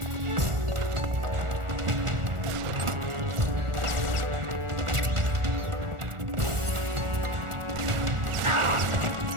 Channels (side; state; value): left; late; 1.4 ms